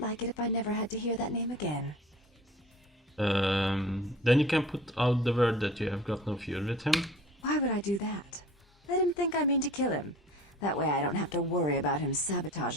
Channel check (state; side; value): normal; both; correlation 0.44